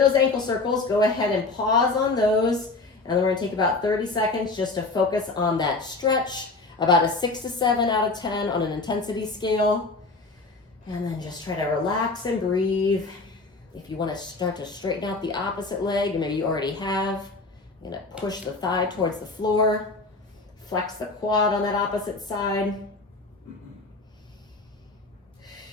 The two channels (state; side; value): quieter; right; 3.6 dB